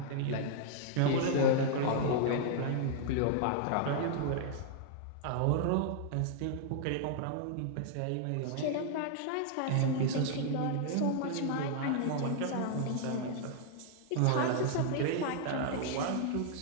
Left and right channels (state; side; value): different; both; correlation -0.01